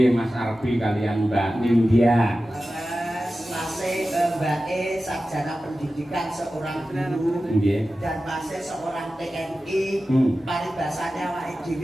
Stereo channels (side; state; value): both; normal; correlation 0.94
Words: Mas Arbi kalian Mbak Nindya. Masih Mbak E sarjana pendidikan seorang guru Nggih. dan masih seorang TNI. Paribasane awake